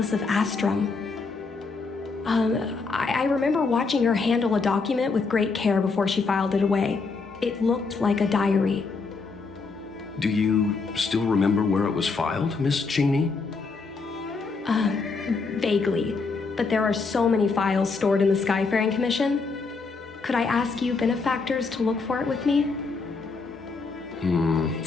of Astrum. I remember watching her handle a document with great care before she filed it away. It looked like a diary. Do you still remember where it was filed, Miss Qingni? Vaguely, but there are so many files stored in the Skyfaring Commission. Could I ask you benefactors to look for it with me?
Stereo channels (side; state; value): right; quieter; 4.4 dB